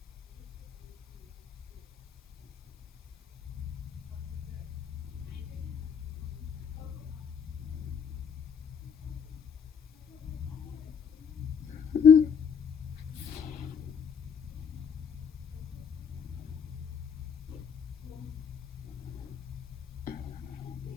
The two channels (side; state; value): right; quieter; 6.9 dB